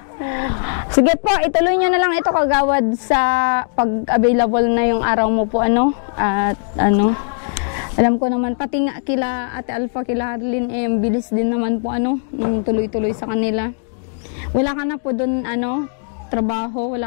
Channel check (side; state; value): right; silent; digital silence